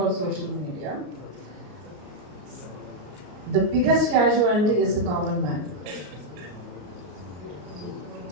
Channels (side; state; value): left; late; 34 ms